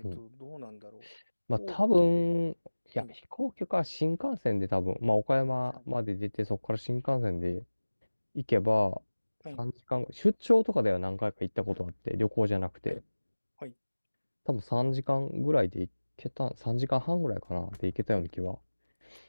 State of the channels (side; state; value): both; inverted; correlation -1.00